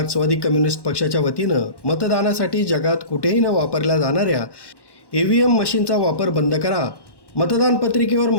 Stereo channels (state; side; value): late; right; 1.1 ms